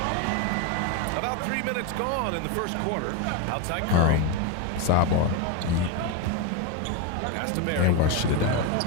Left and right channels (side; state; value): both; different; correlation 0.02